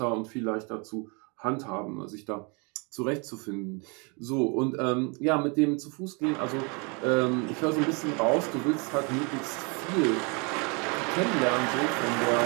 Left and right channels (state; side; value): quieter; left; 32.5 dB